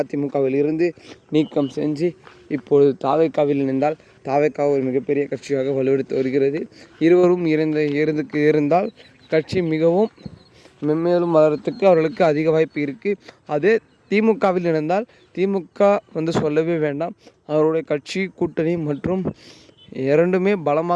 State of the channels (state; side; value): identical; both; correlation 1.00